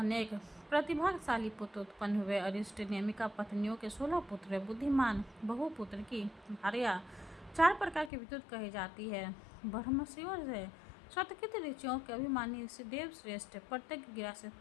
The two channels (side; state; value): right; drops out; at 8.1 s